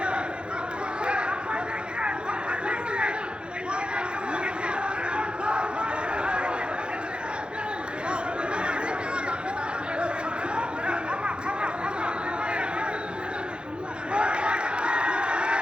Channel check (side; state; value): left; late; 0.054 ms